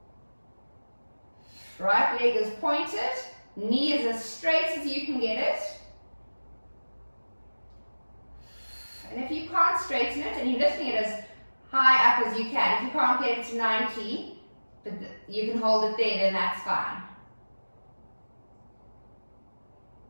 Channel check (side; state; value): both; inverted; correlation -1.00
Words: Right leg is pointed, knee is as straight as you can get it. And if you can't straighten it, and you're lifting it as high up as you can, if you can't get it to 90, but you can hold it there, then that's fine.